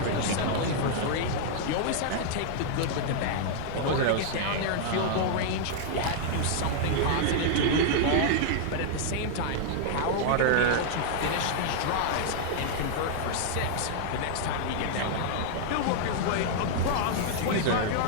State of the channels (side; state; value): both; different; correlation -0.01